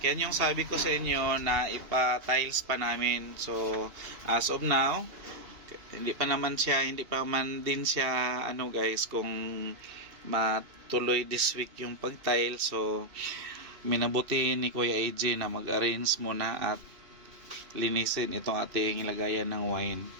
Yan yung sabi ko sa inyo na ipa-tiles pa namin. So, as of now, hindi pa man din siya ano guys, kung matuloy this week yung pag-tile. So, minabuti ni Kuya AJ na mag-arrange muna at linisin itong ating lagayan ng wine.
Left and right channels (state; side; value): late; left; 2.7 ms